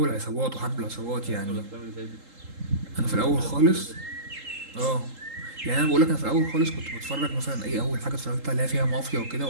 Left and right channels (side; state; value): left; late; 3.8 ms